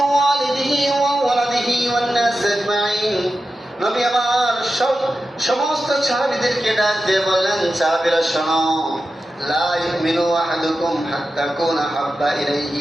ওয়ালিদিহি ওয়া ওয়ালাদিহি ওয়ান নাস আজমাইন। নবী আমার সমস্ত সাহাবীদেরকে ডাক দিয়ে বললেন সাহাবীরা শোনো, লা ইউমিনু আহাদুকুম হাত্তা ইয়াকুনা আহাব্বা ইলাইহি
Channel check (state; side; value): normal; both; correlation 0.92